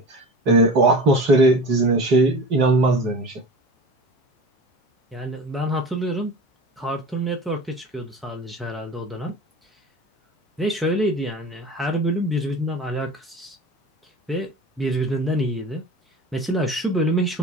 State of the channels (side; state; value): both; normal; correlation 0.34